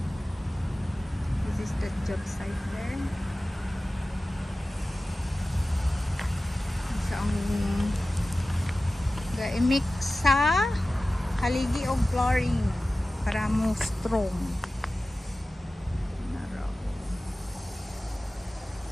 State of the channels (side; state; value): both; normal; correlation 0.96